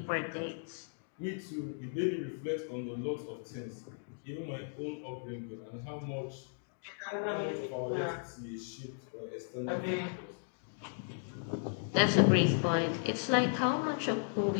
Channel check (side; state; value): right; silent; digital silence